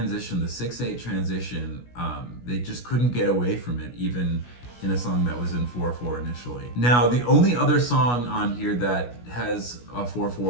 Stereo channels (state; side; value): late; right; 16 ms